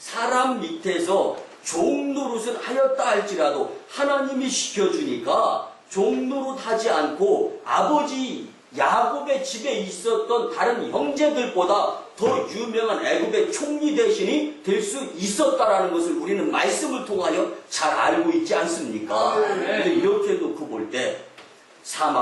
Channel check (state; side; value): identical; both; correlation 1.00